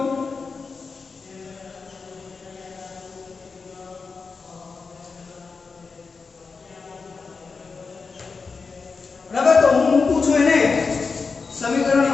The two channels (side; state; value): right; quieter; 4.7 dB